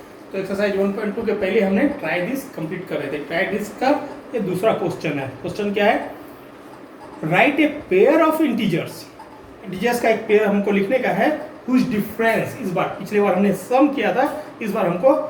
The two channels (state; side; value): identical; both; correlation 1.00